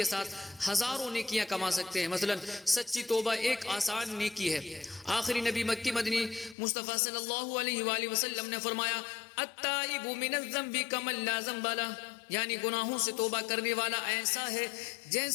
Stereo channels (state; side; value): drops out; right; at 6.6 s